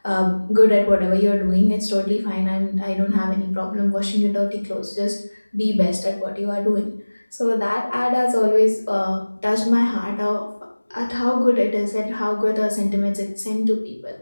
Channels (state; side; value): inverted; both; correlation -1.00